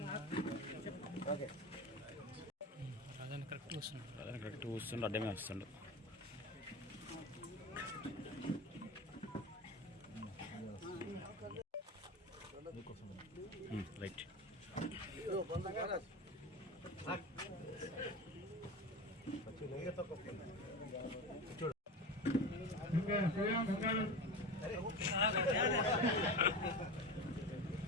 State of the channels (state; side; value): normal; both; correlation 0.26